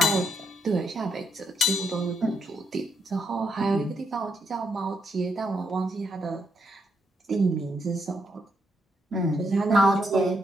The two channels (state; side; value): normal; both; correlation 0.78